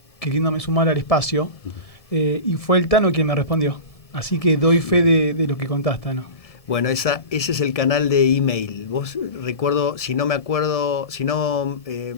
queriéndome sumar al espacio, y fue el Tano quien me respondió. Así que doy fe de lo que contaste, Tano. Bueno, ese es el canal de email. Vos, recuerdo, si no me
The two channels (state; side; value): late; right; 1.7 ms